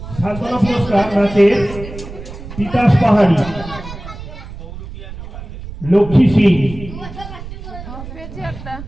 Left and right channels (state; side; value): noise; right; rumble, 12 dB below the sound